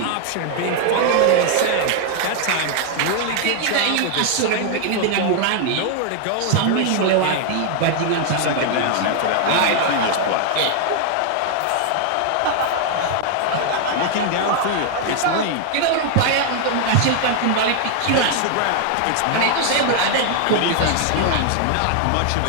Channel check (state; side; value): different; both; correlation 0.00